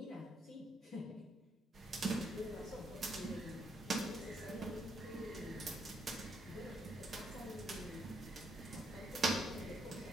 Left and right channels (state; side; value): normal; both; correlation 0.75